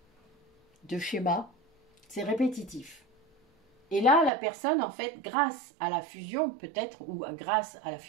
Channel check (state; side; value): drops out; left; at 4.3 s